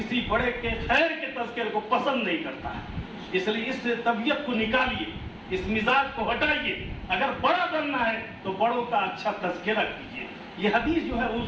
بڑے کے خیر کے تذکرے کو پسند نہیں کرتا ہے. اس لیے اس طبیعت کو نکالیے, اس مزاج کو ہٹائیے. اگر بڑا بننا ہے تو بڑوں کا اچھا تذکرہ کیجیے. یہ حدیث جو ہے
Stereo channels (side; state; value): both; identical; correlation 1.00